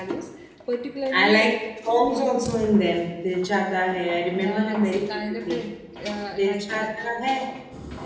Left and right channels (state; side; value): identical; both; correlation 1.00